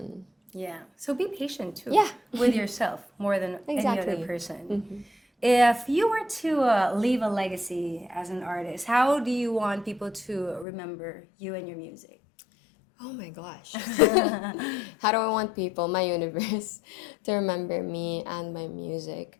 Yeah. So be patient too. Yeah. With yourself more than any Exactly. other person. If you were to leave a legacy as an artist, how do you want people to remember you and your music? Oh my gosh. How do I want people, my universe, to remember me and my music?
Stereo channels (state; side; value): drops out; right; at 10.7 s